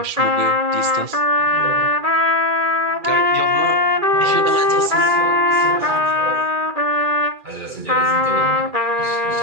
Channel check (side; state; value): left; late; 2.4 ms